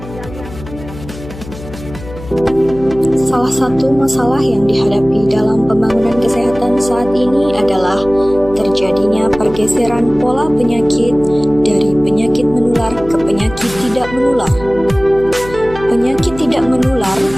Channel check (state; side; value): noise; left; hum, 14 dB below the sound